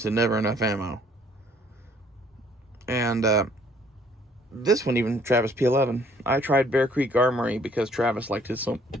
of never enough ammo. And this one, even Travis P11. I tried Bear Creek Armory because Travis liked it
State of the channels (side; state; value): both; normal; correlation 0.61